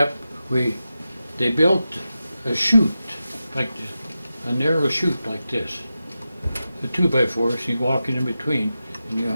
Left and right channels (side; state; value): both; inverted; correlation -0.92